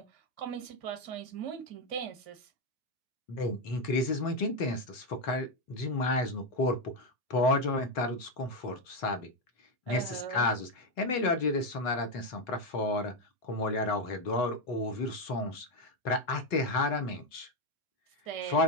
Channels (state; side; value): late; right; 4.0 ms